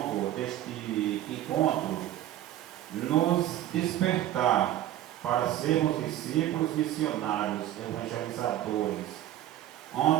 deste encontro, nos despertar para sermos discípulos missionários, evangelizadores,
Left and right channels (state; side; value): quieter; left; 13.0 dB